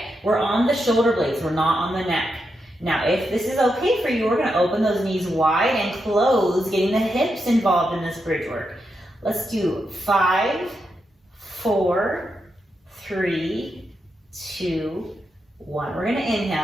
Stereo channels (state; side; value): normal; both; correlation 0.85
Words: we're on the shoulder blades, we're not on the neck. Now, if this is okay for you, we're gonna open those knees wide and close, getting the hips involved in this bridge work. Let's do 5, 4, 3, 2, 1. We're gonna